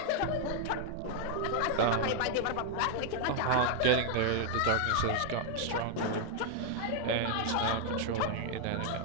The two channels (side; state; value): both; different; correlation 0.00